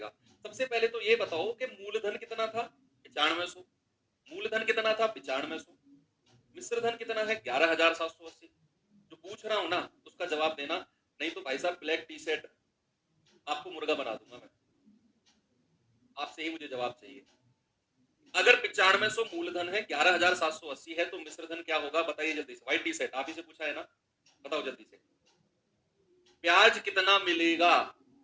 सबसे पहले तो ये बताओ कि मूलधन कितना था 9500, मूलधन कितना था 9500, मिश्र धन कितना है 11,780। जो पूछ रहा हूं ना उसका जवाब देना, नहीं तो भाई साहब ब्लैक टी शर्ट आपको मुर्गा बना दूंगा मैं। आपसे ही मुझे जवाब चाहिए। अगर 9500 मूलधन है, 11,780 है, तो मिश्रधन क्या होगा बताइए जल्दी से। व्हाइट टी शर्ट आप ही से पूछा है ना, बताओ जल्दी से, ब्याज कितना मिलेगा।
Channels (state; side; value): identical; both; correlation 1.00